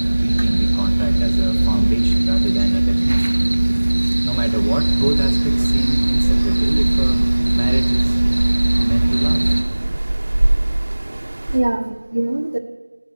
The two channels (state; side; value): inverted; both; correlation -1.00